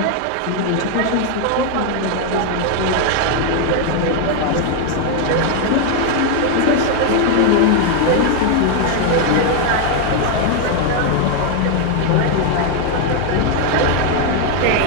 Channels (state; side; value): different; both; correlation 0.01